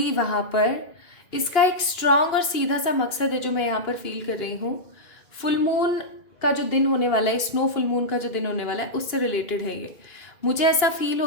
वहां पर, इसका एक स्ट्रांग और सीधा सा मकसद है जो मैं यहाँ पर फील कर रही हूँ। फुल मून का जो दिन होने वाला है, स्नो फुल मून का जो दिन होने वाला है, उससे रिलेटेड है ये। मुझे ऐसा फील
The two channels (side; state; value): right; late; 2.9 ms